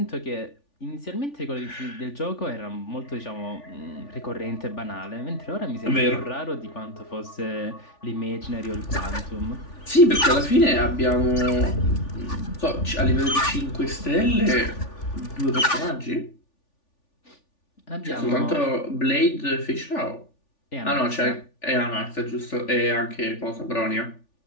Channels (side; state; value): right; late; 3.4 ms